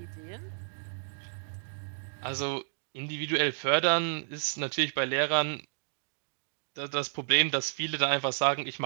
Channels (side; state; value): left; silent; digital silence